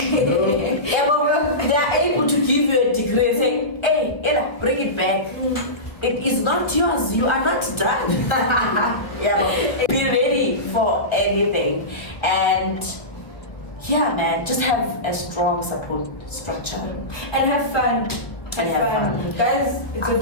are able to give you a degree and say, hey, Ella, bring it back. It is not yours. You are not done. But be ready for anything. And yeah, man, just have a strong support structure. And have fun. Guys, it's a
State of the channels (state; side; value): late; right; 1.2 ms